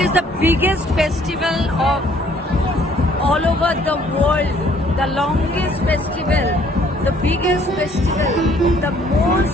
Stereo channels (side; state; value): both; normal; correlation 0.61